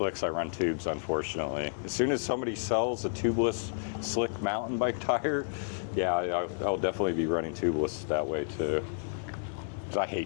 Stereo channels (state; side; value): silent; right; digital silence